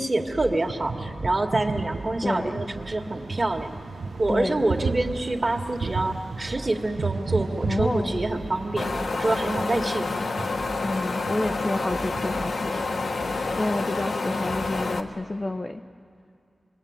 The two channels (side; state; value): both; normal; correlation 0.94